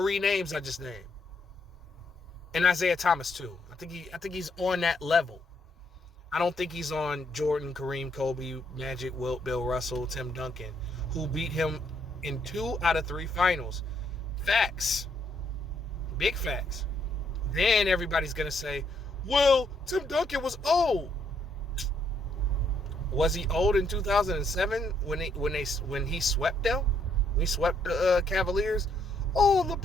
names I just named. And Isaiah Thomas, too. I think he's on that level. I don't think he's on Jordan, Kareem, Kobe, Magic, Wilt, Bill Russell, Tim Duncan, who beat him in 2 out of 3 finals. Facts. Big facts. Then everybody's going to say, well, Tim Duncan was old. Was he old in 2007 when he swept them? When he swept the Cavaliers? Oh,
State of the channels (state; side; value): normal; both; correlation 0.73